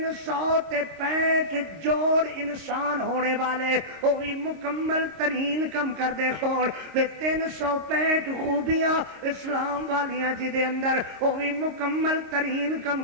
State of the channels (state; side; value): late; left; 26 ms